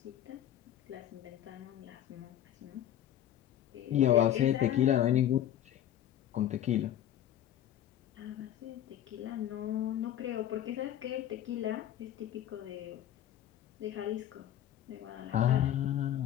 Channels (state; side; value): quieter; right; 11.4 dB